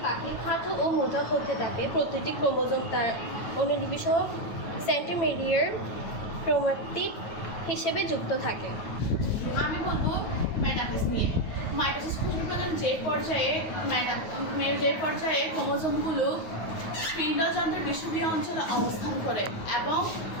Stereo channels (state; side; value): late; right; 9.3 ms